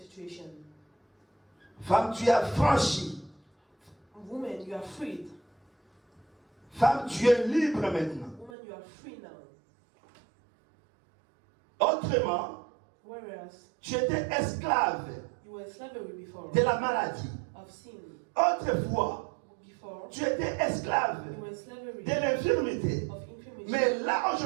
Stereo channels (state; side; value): drops out; left; at 8.5 s